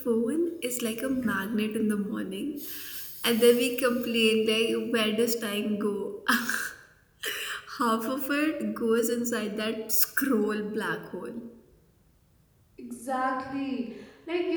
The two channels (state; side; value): identical; both; correlation 1.00